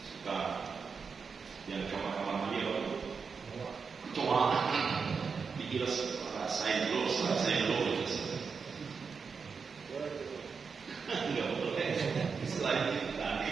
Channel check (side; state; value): left; quieter; 5.5 dB